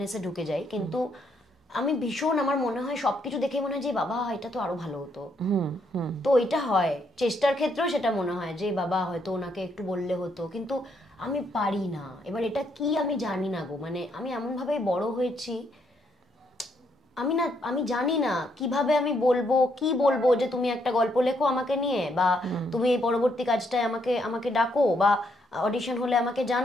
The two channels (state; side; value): normal; both; correlation 0.74